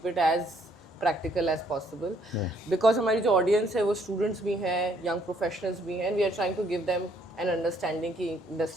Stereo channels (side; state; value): both; normal; correlation 0.66